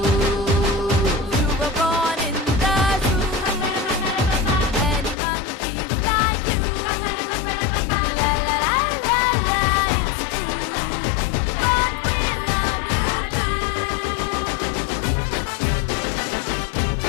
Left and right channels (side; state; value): right; drops out; at 5.2 s